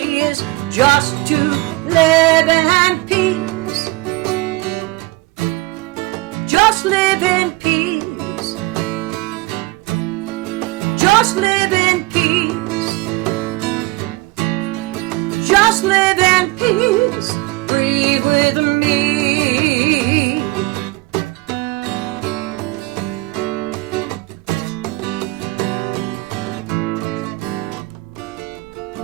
is just to live in peace. Just live in peace. Just live in peace. Just live in peace. Breathe with me.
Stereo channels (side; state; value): left; quieter; 21.7 dB